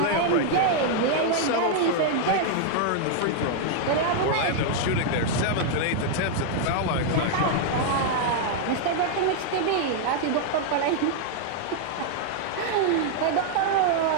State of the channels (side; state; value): both; different; correlation -0.01